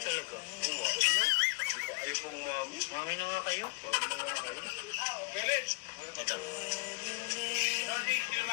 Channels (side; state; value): right; quieter; 29.1 dB